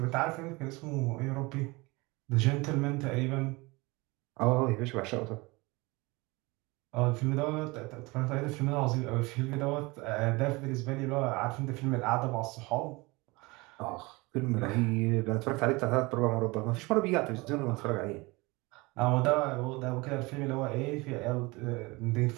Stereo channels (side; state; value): left; quieter; 24.2 dB